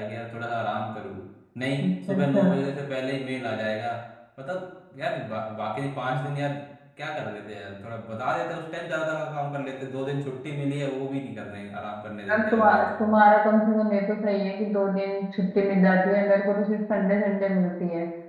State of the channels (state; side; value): identical; both; correlation 1.00